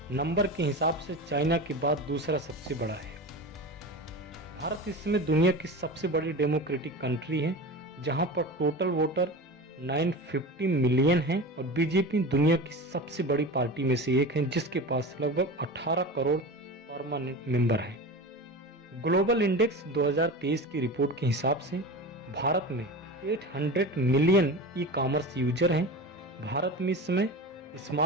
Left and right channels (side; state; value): both; normal; correlation 0.29